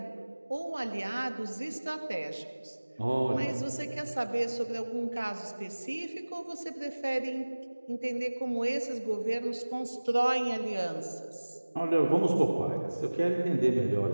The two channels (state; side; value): inverted; both; correlation -1.00